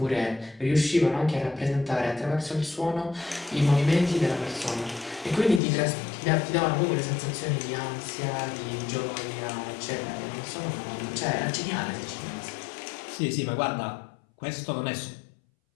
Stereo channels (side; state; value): right; drops out; at 5.6 s